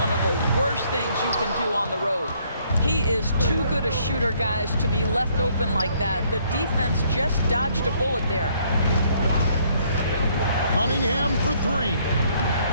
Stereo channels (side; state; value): both; inverted; correlation -0.66